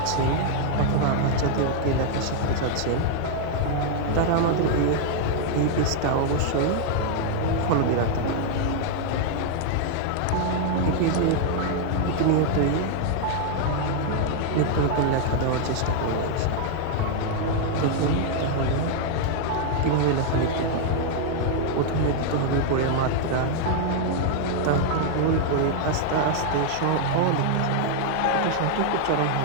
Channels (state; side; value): different; both; correlation 0.00